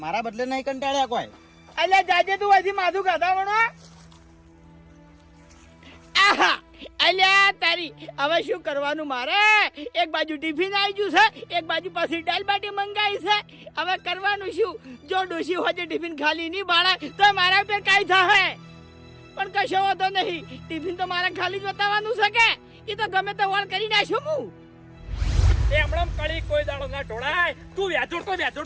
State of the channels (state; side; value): identical; both; correlation 1.00